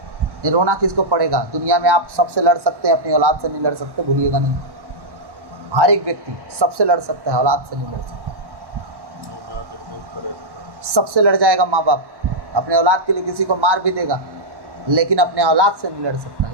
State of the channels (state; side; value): late; left; 1.1 ms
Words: ये रोना किसको पड़ेगा। दुनिया में आप सबसे लड़ सकते हैं, अपनी औलाद से नहीं लड़ सकते, भूलिएगा नहीं। हर एक व्यक्ति सबसे लड़ सकता है, औलाद से नहीं लड़ सकता। सबसे लड़ जाएगा माँ बाप, अपने औलाद के लिए किसी को मार भी देगा, लेकिन अपने औलाद से नहीं लड़ सकता।